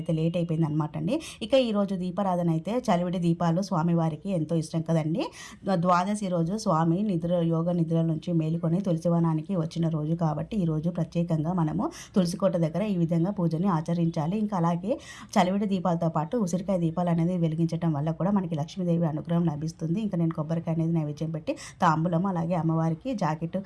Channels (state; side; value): identical; both; correlation 1.00